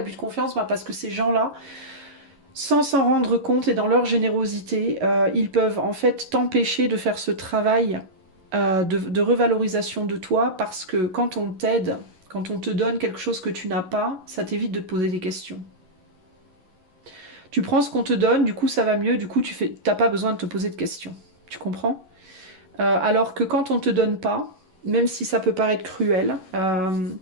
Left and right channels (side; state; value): left; late; 11 ms